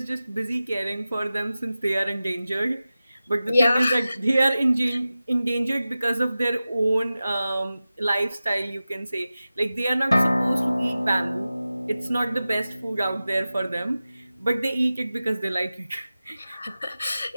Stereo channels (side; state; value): both; inverted; correlation -0.95